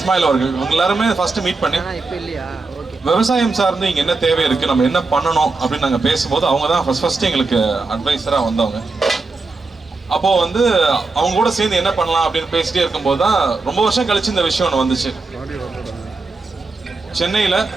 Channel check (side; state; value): left; quieter; 3.8 dB